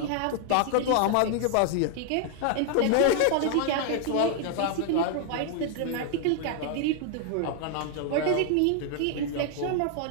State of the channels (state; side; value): different; both; correlation 0.00